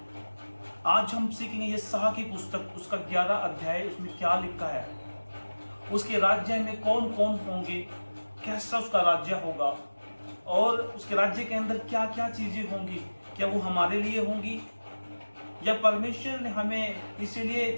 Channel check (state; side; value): inverted; both; correlation -1.00